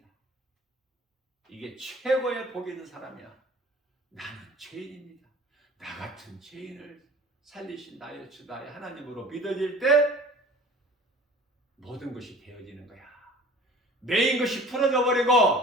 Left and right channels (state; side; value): normal; both; correlation 0.45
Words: 이게 최고의 복이 있는 사람이야. 나는 죄인입니다. 나 같은 죄인을 살리신 나의 주 나의 하나님으로 믿어질 때 모든 것이 되어지는 거야. 매인 것이 풀어져